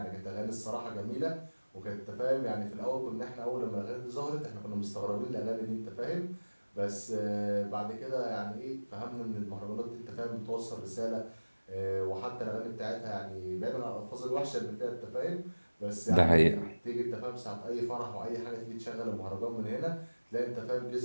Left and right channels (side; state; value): both; inverted; correlation -1.00